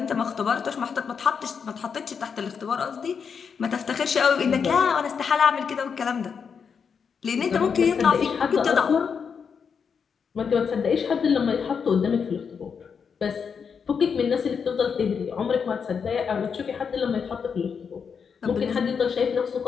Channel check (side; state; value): right; quieter; 6.4 dB